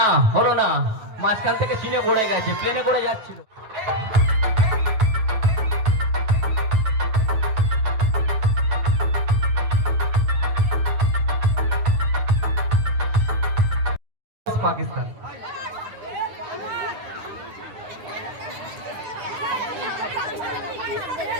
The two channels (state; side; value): late; left; 9.5 ms